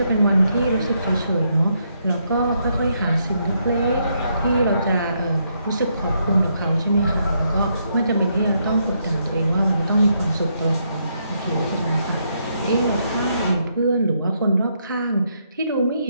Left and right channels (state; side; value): inverted; both; correlation -0.76